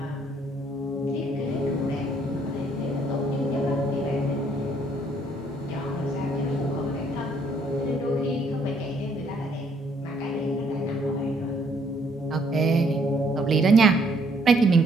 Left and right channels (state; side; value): normal; both; correlation 0.66